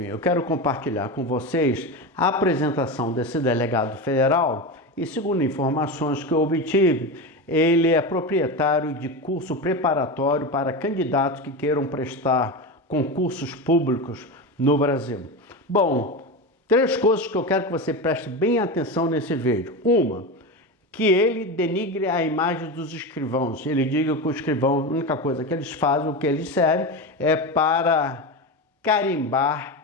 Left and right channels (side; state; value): both; normal; correlation 0.20